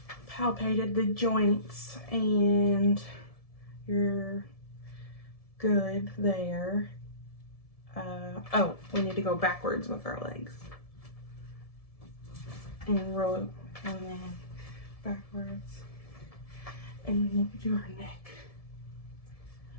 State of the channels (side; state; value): right; late; 1.7 ms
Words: palpated the joints and you're good there. Oh, we need to go backwards with our legs. And roll and then backwards. And we need to do our neck.